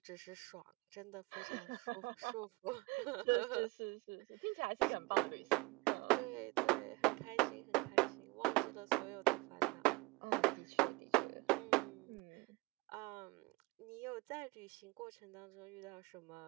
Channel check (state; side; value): quieter; left; 25.3 dB